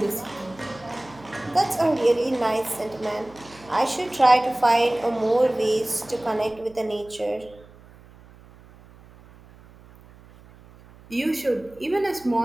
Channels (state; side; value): noise; right; hum, 24 dB below the sound